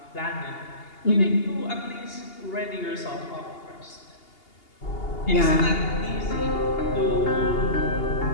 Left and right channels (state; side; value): late; right; 2.8 ms